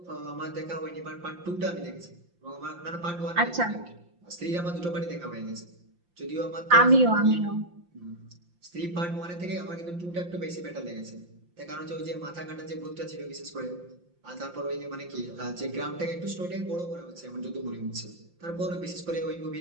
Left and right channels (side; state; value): left; late; 5.7 ms